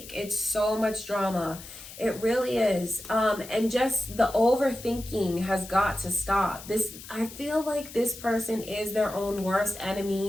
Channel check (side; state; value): left; noise; hiss, 15 dB below the sound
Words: It's so much drama. It really is. And just the overthinking has got to stop. I feel like this person is their own worst